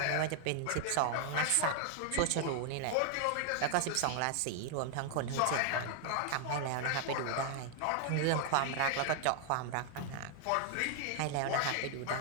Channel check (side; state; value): both; different; correlation 0.00